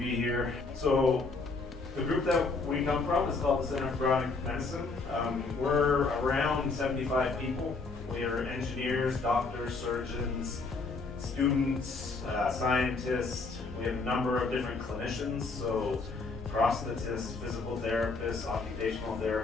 here. So the group that we come from is called the Center for Bionic Medicine. We're around 75 people. We are engineers, doctors, surgeons, students, scientists. We have a number of different clinicians, so prosthetists, physical therapists, occupational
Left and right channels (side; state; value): right; quieter; 4.0 dB